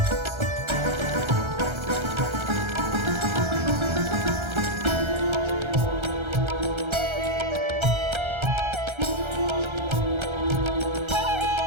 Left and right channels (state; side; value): late; left; 1.3 ms